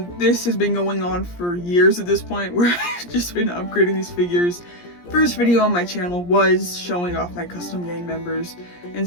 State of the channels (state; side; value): late; right; 17 ms